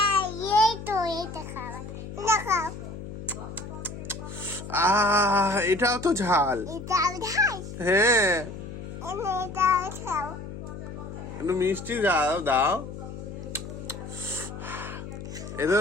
খাবার। এটা খাও। এটাও তো ঝাল। এটাও ঝাল? হ্যাঁ। এটাও খাও। একটু মিষ্টি দাও। এটা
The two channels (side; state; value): left; noise; hum, 10 dB below the sound